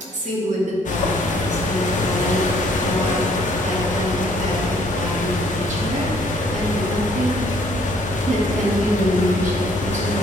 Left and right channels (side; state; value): both; normal; correlation 0.62